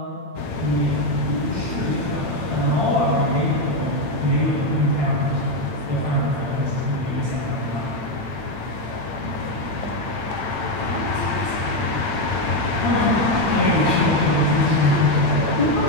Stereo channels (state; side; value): late; left; 8.9 ms